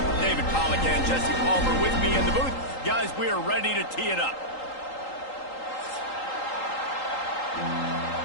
David Pollack and Jesse Palmer with me in the booth. Guys, we are ready to tee it up.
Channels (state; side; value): late; right; 3.8 ms